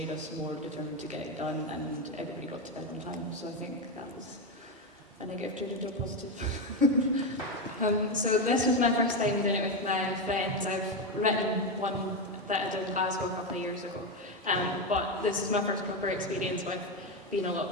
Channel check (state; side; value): normal; both; correlation 0.11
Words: us more determined to get it done, and everybody got to bed on time. So I think that was a negative turned into a positive. So this was my first time doing it with my friends. I've written one that I did in Glasgow a couple of years ago, but this is my first proper experience with being a lot